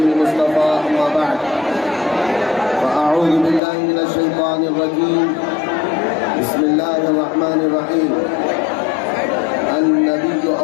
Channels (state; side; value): drops out; right; at 3.6 s